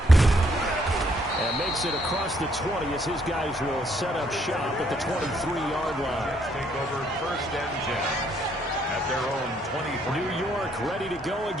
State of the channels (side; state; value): both; normal; correlation 0.69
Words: And makes it across the 20 as his guys will set up shop at the 23-yard line. Let's take over 1st and 10. At their own 23. New York ready to go